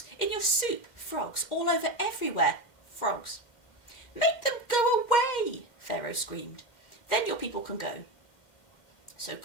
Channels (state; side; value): late; right; 2.1 ms